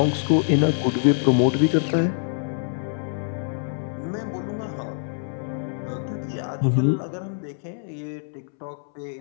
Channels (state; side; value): silent; right; 62 dB below the other